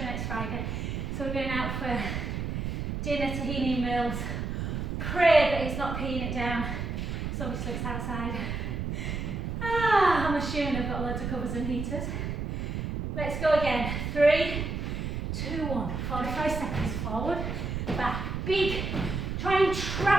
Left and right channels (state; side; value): noise; right; rumble, 3 dB below the sound